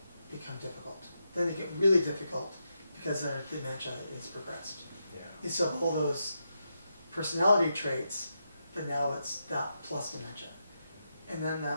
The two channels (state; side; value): inverted; both; correlation -0.85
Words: become difficult. Then they get really difficult because their dementia is progressed. Yeah. You still have all those personality traits, but now it's that plus dementia. And then